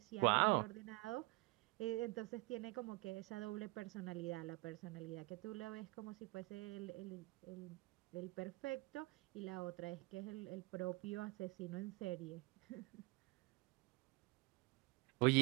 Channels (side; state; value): left; quieter; 23.6 dB